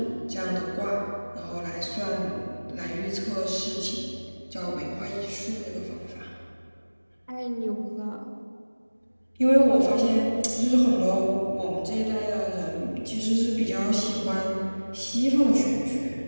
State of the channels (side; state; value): both; inverted; correlation -1.00